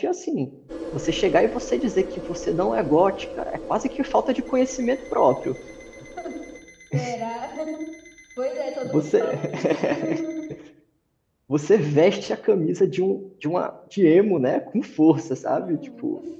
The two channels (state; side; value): identical; both; correlation 1.00